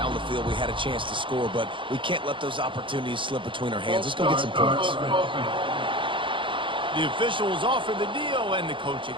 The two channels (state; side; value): late; left; 0.24 ms